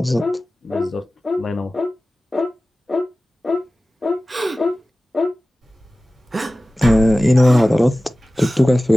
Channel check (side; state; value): both; normal; correlation 0.96